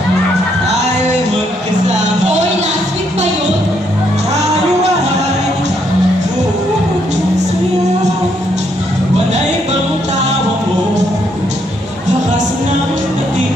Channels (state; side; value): normal; both; correlation 0.74